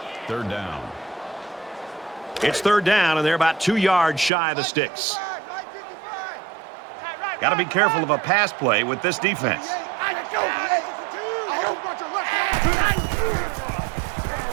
Third down. It's third down, and they're about 2 yards shy of the sticks. Got to be careful of a pass play with this defense.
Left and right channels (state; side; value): drops out; left; at 4.3 s